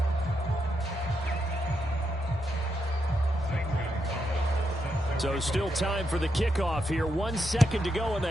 So still time for the kickoff here. 1 second to go in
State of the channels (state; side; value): normal; both; correlation 0.82